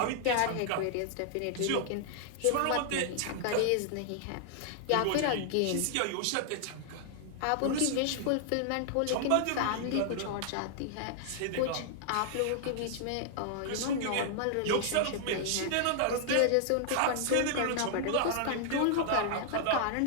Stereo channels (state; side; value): different; both; correlation 0.00